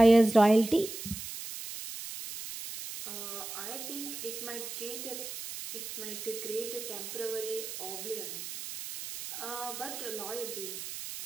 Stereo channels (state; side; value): noise; right; hiss, 8 dB below the sound